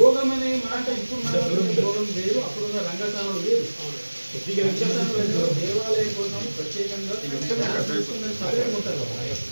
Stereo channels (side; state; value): both; inverted; correlation -1.00